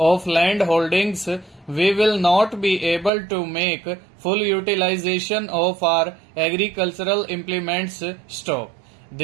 land holdings, we will not be able to make full utilization of our agricultural implements. Stop.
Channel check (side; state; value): left; drops out; at 3.1 s